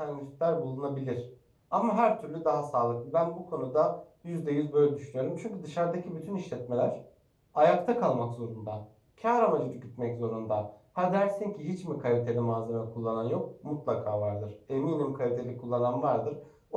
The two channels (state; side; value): identical; both; correlation 1.00